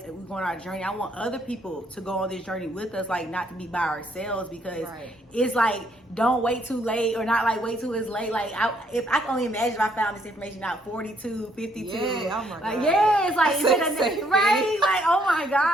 go on our journey, I want other people to go on this journey with us, like not to be by ourselves, because it's like, don't wait too late, or not like wait till it's late. Like if I can only imagine if I found this information out 42, 52. Oh my God. It's like, right? Like, oh my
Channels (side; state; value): both; normal; correlation 0.69